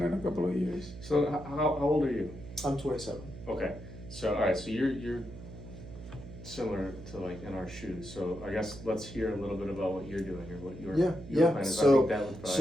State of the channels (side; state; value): right; noise; hum, 13 dB below the sound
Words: a couple of years. So how old are you? I'm 27. Okay. So all right. So you're similar to like in our shoes. So I guess let's hear a little bit about what you're doing or what your Yeah. plan is. I So think that would probably,